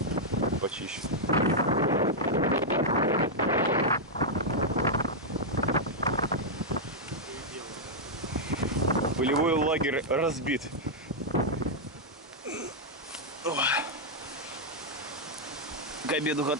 почищу. Полевой лагерь разбит. К обеду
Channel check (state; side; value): normal; both; correlation -0.04